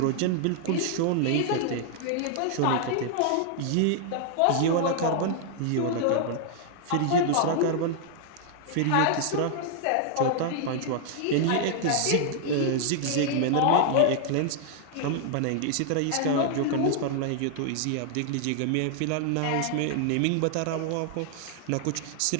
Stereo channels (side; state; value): both; different; correlation 0.00